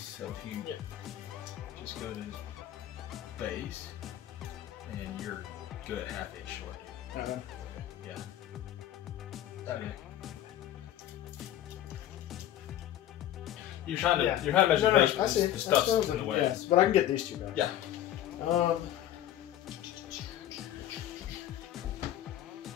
So if you just go to his base, and you're good at half inch short. Okay. Yeah. Okay. You're trying to measure the base, but the stuff's in the way. Yes, but I can get these two guys. Yeah.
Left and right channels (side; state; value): right; quieter; 12.4 dB